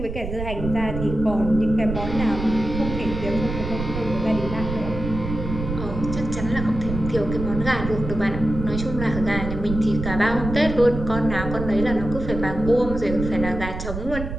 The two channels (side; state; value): right; noise; rumble, 6 dB below the sound